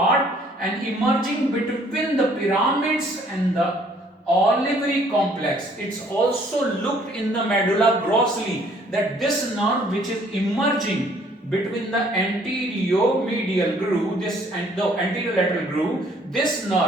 and emerging between the pyramids and the olivary complex. It's also looked in the medulla grossly that this nerve which is emerging between the anterior medial groove, this and the anterior lateral groove, this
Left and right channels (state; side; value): normal; both; correlation 0.61